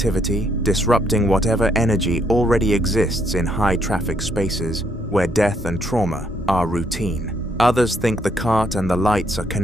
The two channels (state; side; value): normal; both; correlation 0.72